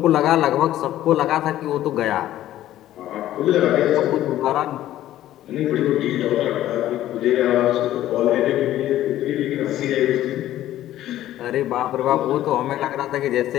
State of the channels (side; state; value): right; quieter; 13.4 dB